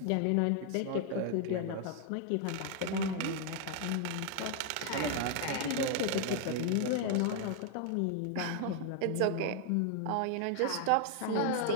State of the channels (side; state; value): both; different; correlation 0.00